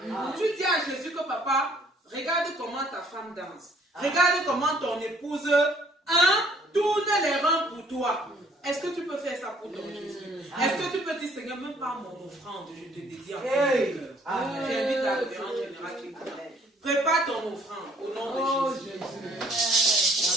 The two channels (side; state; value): both; normal; correlation 0.60